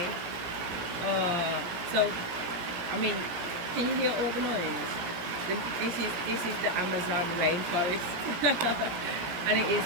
So, I mean, can you hear all the noise? This is the Amazon rainforest. And it is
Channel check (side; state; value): left; late; 17 ms